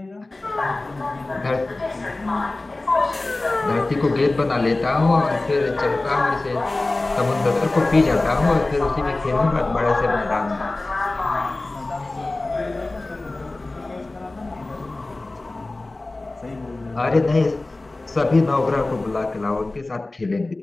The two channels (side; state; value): right; quieter; 3.0 dB